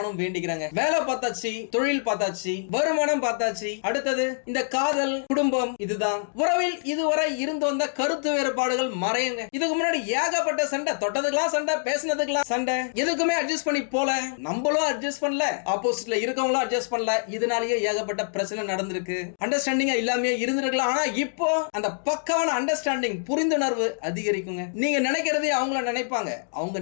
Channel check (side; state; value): right; silent; digital silence